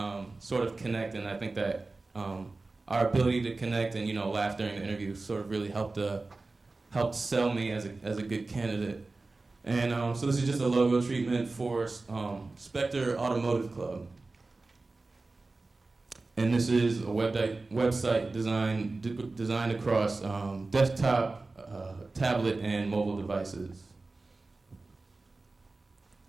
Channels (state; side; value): quieter; left; 3.4 dB